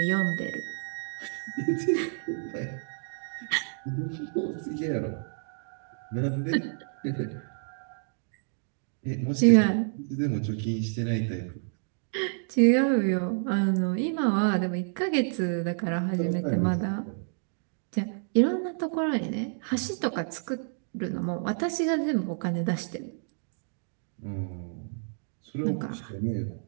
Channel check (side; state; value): left; silent; digital silence